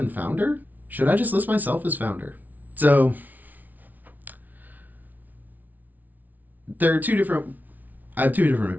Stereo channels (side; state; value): left; late; 0.079 ms